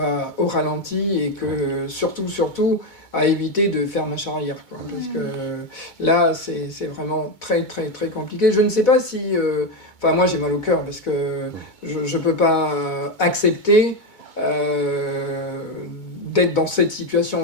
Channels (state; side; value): late; right; 2.2 ms